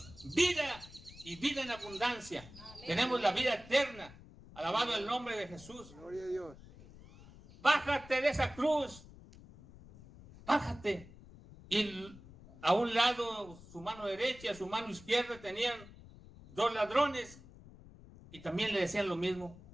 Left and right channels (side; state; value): left; noise; rumble, 19 dB below the sound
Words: vida y vida en abundancia. Amén. Tenemos la vida eterna. Alabado el nombre de Jesús. Gloria a Dios. Bájate de esa cruz. Bájate. Y a un lado, su mano derecha y a su mano izquierda tenían dos ladrones. Y también le decían lo mismo.